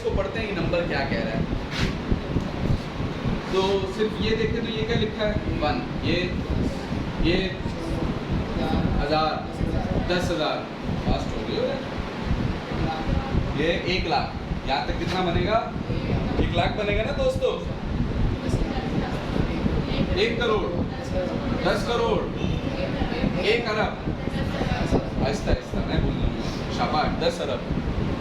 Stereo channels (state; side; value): identical; both; correlation 1.00